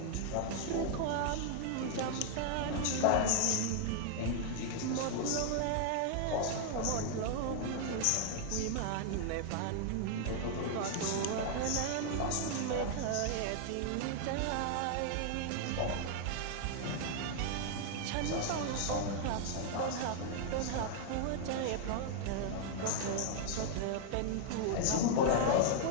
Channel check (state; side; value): different; both; correlation -0.01